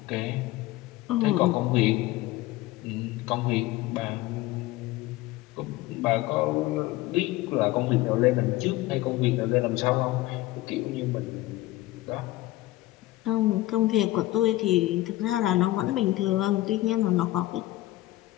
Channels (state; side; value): quieter; right; 17.2 dB